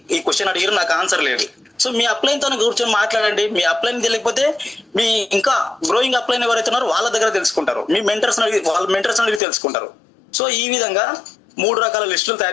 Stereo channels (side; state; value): right; drops out; at 9.4 s